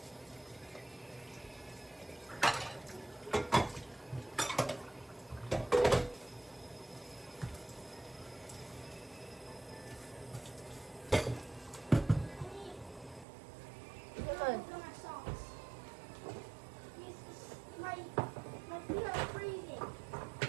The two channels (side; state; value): left; drops out; at 13.2 s